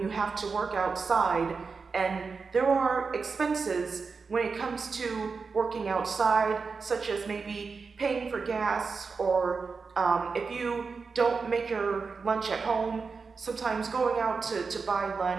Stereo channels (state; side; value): quieter; left; 4.9 dB